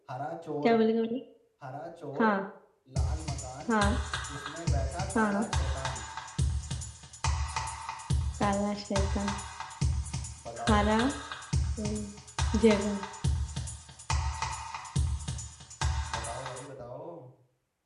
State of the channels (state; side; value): identical; both; correlation 1.00